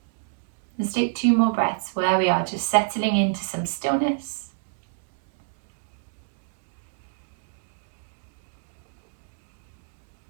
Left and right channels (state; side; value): silent; left; digital silence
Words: Let's take 2 more breaths where we are, just settling into some stillness.